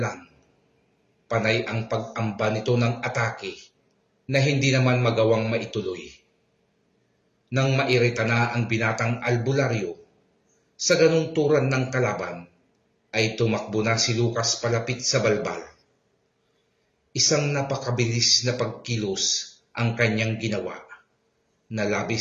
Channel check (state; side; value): identical; both; correlation 1.00